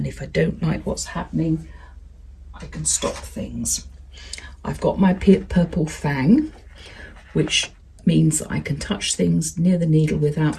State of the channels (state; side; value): identical; both; correlation 1.00